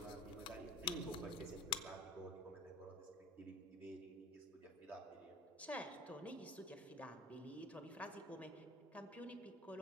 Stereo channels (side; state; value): both; normal; correlation 0.42